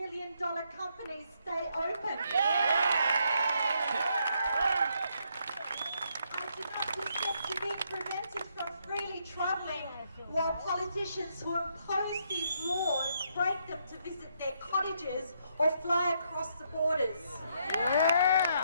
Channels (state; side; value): inverted; both; correlation -0.75